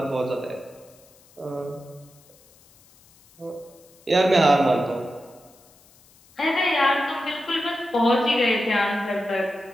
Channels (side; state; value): left; noise; hiss, 28 dB below the sound